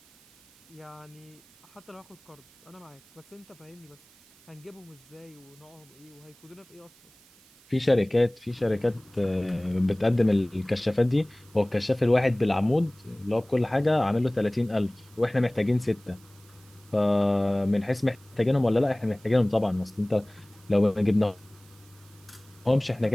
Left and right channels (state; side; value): noise; right; hiss, 27 dB below the sound